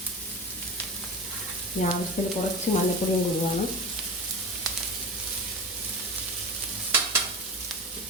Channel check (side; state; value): both; normal; correlation 0.30